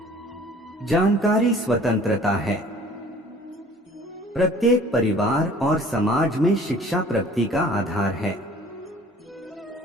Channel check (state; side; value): normal; both; correlation 0.51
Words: जानकारी स्वतंत्रता है। प्रत्येक परिवार और समाज में शिक्षा प्रगति का आधार है।